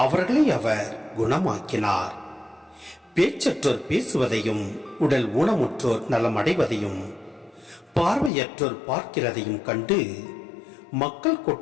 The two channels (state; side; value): drops out; right; at 8.3 s